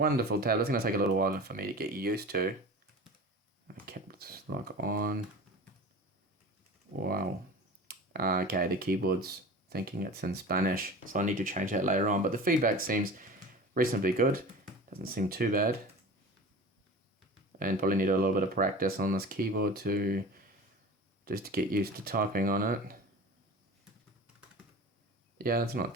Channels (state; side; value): normal; both; correlation 0.36